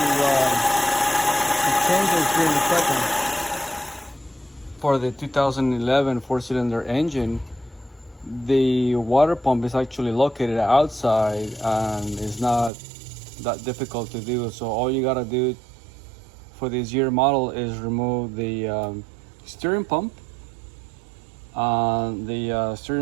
change it here in a second. For the 2011 four-cylinder engine, the water pump is actually located outside and it's not that difficult to do. So all you gotta do for this year model is remove the steering pump, the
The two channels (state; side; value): drops out; left; at 12.7 s